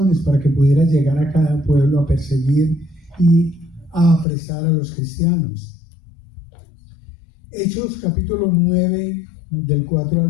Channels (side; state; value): right; drops out; at 4.2 s